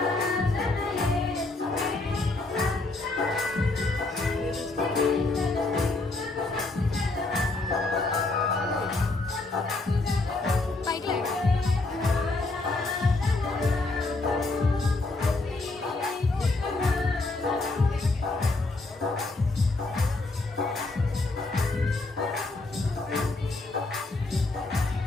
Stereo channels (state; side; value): quieter; right; 3.2 dB